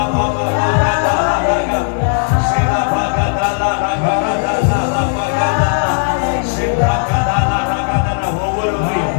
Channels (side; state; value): right; silent; 68 dB below the other